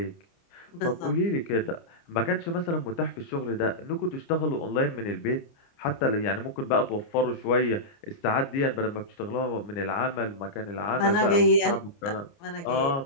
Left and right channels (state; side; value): late; right; 29 ms